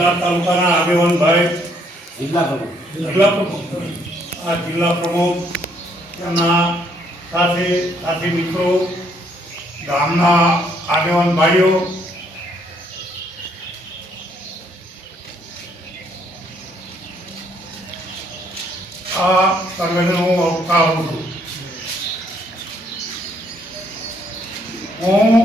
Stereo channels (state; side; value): normal; both; correlation 0.68